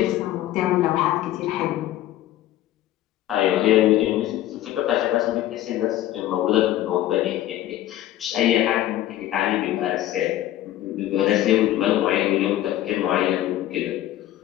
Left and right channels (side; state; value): right; quieter; 13.7 dB